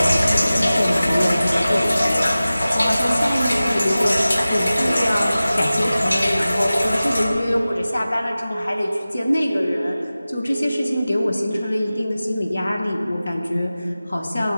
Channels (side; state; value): both; inverted; correlation -0.96